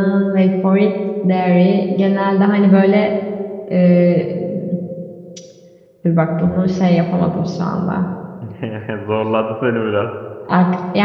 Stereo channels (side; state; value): both; identical; correlation 1.00